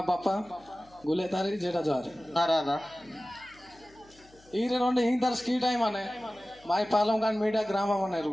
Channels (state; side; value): noise; left; hum, 28 dB below the sound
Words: बापा गुले तारी जेटा जार अरे ఈరే రెండు ఇంటర్ స్కీ టైం అనే మాయ పాలం కాని మీడియా గ్రామం అనేరు